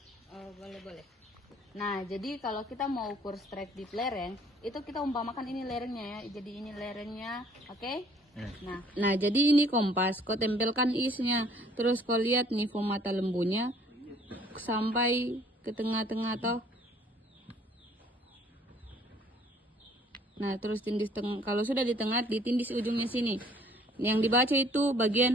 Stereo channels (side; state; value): both; normal; correlation 0.58